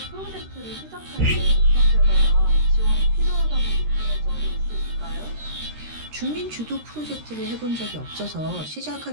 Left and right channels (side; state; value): left; late; 13 ms